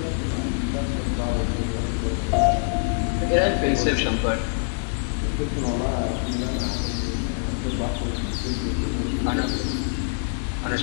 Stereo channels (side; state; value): right; silent; digital silence